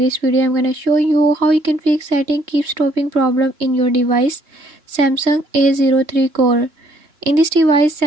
video I'm gonna show you how you can fix setting keep stopping problem in your device Samsung A03 Core. In this device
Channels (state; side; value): late; left; 2.9 ms